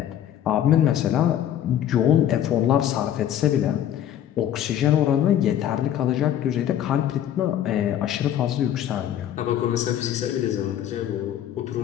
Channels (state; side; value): quieter; right; 10.8 dB